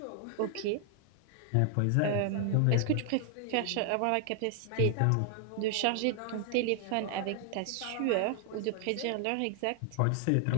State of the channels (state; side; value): different; both; correlation 0.00